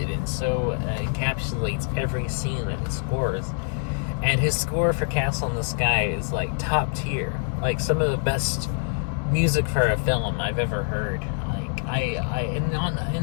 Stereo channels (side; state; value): right; silent; 62 dB below the other